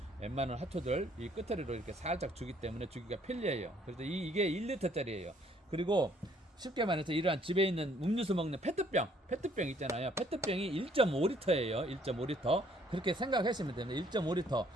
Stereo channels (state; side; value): normal; both; correlation 0.63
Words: 웬만한 하초들 이 끝으로 이렇게 살짝 주기 때문에 주기가 편리해요. 그래서 이게 1리터짜리예요. 그리고 쉽게 말해서 이러한 집에 있는 음료수 먹는 페트병 있잖아요. 페트병이 1.5리터예요. 1.5리터. 그렇게 생각하시면 됩니다. 1.5리터.